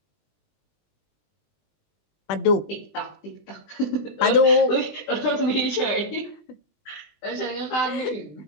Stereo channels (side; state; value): right; late; 20 ms